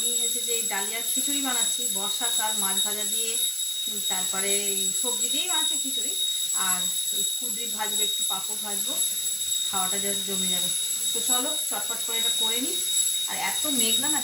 হচ্ছে যে এই ডালিয়ার খিচুড়ি বানাচ্ছি, বর্ষাকাল মাছ ভাজা দিয়ে, তারপরে সবজি দিয়েই বানাচ্ছি খিচুড়ি। আর ওই কুদরি ভাজবো, একটু পাঁপড় ভাজবো, খাওয়াটা জাস্ট জমে যাবে। তো চলো চটপট করে এটা করে নিই। আর এত মেঘলা না,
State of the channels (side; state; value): right; noise; hiss, 9 dB below the sound